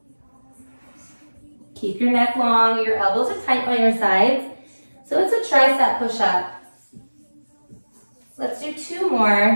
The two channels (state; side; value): inverted; both; correlation -1.00